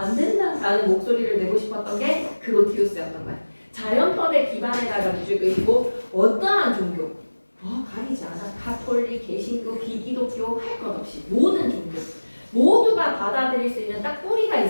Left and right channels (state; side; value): inverted; both; correlation -1.00